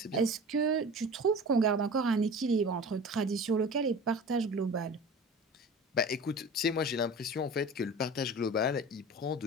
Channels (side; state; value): both; normal; correlation 0.37